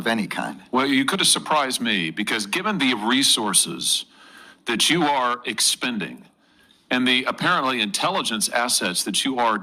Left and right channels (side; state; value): both; identical; correlation 1.00